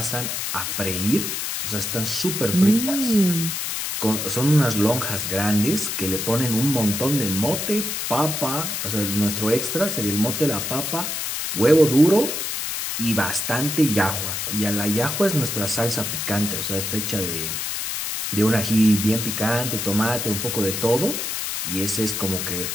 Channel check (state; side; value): noise; left; hiss, 3 dB below the sound